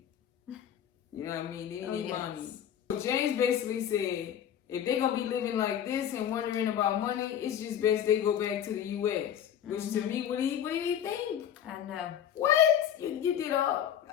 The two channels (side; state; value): right; quieter; 9.7 dB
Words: You know what I mean? They need mommy. So James basically said, if they gonna be living like this and wondering about money, it's just best they go back to the U.S. Which to me, what do you think? I know. What? You did all?